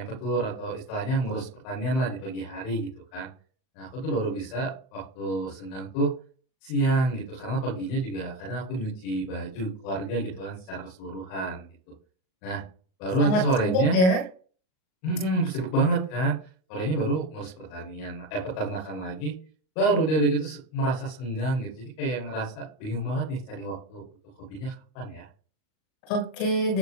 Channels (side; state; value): right; late; 38 ms